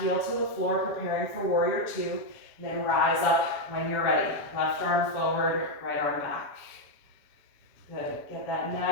to the floor, preparing for warrior two, and then rise up when you're ready. Left arm forward, right arm back. Good, get that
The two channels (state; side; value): late; right; 7.2 ms